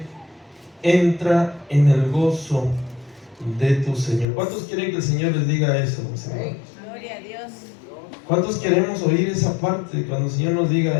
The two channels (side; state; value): right; drops out; at 4.2 s